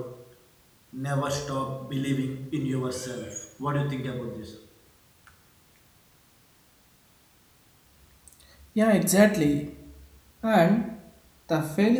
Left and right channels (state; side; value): identical; both; correlation 1.00